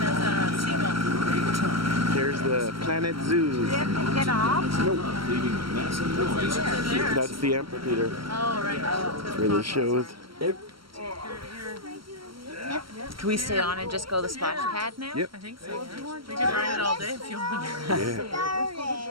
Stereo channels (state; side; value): late; left; 0.74 ms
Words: a seagull. Great time. There's the Planet Zoo. Get off? Leaving a massive noise. There. That's the amphitheater Oh, right. where the shows. Can we stay on and just go to the splash pad now? Yep. I think so. Yeah. We could ride it all day if you want.